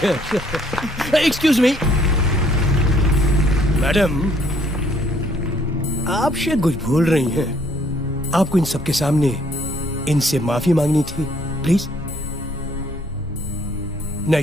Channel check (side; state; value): both; normal; correlation 0.64